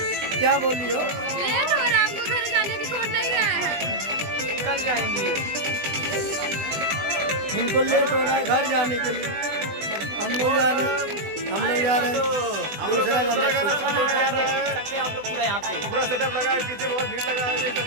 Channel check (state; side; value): late; left; 20 ms